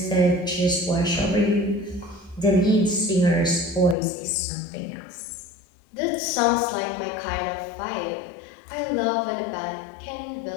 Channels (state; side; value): drops out; right; at 4.0 s